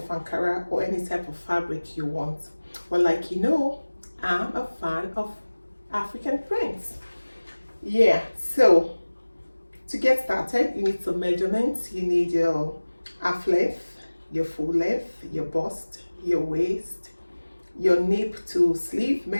Ankara or any type of fabric you want. But like you know, I'm a fan of African prints. Yeah, so to get started, you need some measurements. You need your half length, your full length, your bust, your waist, your nape to sleeve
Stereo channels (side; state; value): both; inverted; correlation -1.00